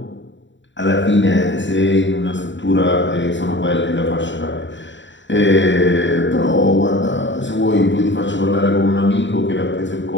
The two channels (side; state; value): right; late; 0.54 ms